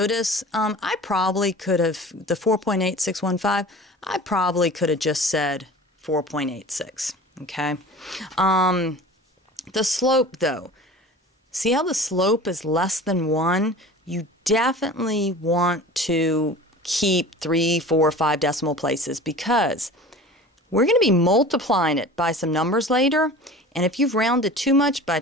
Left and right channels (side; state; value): both; normal; correlation 0.39